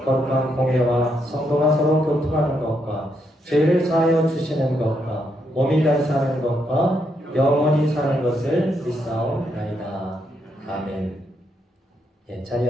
거룩한 공예와 성도가 서로 교통하는 것과 죄를 사하여 주시는 것과 몸이 다시 사는 것과 영원히 사는 것을 믿사옵나이다. 아멘. 예,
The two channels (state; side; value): normal; both; correlation 0.78